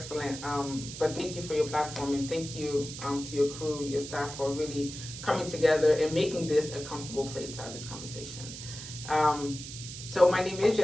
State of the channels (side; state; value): right; noise; hiss, 10 dB below the sound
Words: But thank you for your platform, and thank you to your crew, your staff, for really coming together and making this a comfortable place to have this conversation. So my name is